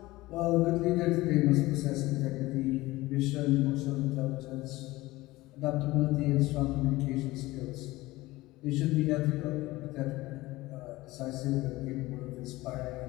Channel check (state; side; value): quieter; right; 19.1 dB